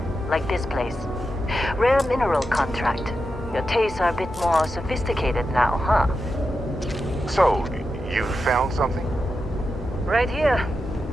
like this place. Rare mineral contract. Your tastes are a bit more sophisticated now, huh? So, you found something? Right here.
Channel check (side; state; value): both; normal; correlation 0.89